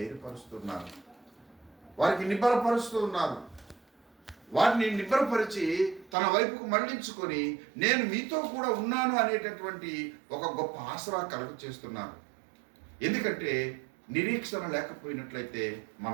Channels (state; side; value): drops out; left; at 6.2 s